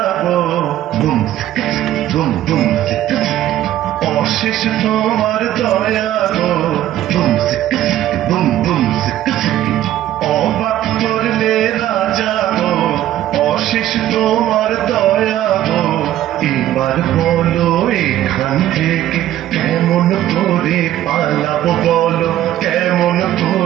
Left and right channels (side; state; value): left; quieter; 13.0 dB